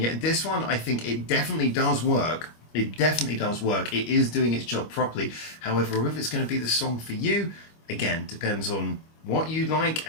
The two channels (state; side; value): late; right; 25 ms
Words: yet this one, I think it definitely does work. It definitely does work. It is doing its job properly. However, if it's going to be the song for you, again, depends on what you like